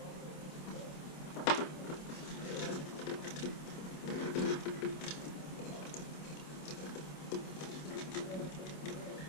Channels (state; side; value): late; right; 27 ms